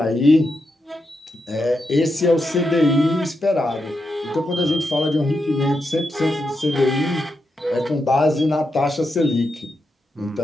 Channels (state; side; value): normal; both; correlation 0.85